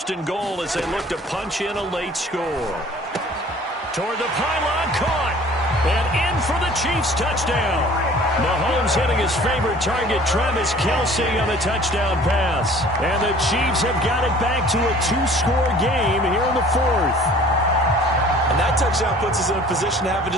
and goal as they look to punch in a late score. Toward the pylon, caught. And in for the Chiefs touchdown. Mahomes hitting his favorite target, Travis Kelce, on the touchdown pass. And the Chiefs have got it back to a 2-score game here in the 4th. And that touchdown puts us in a position to have a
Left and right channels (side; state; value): both; normal; correlation 0.50